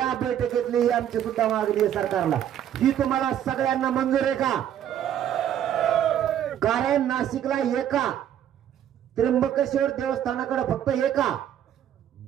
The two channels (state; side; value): quieter; left; 10.4 dB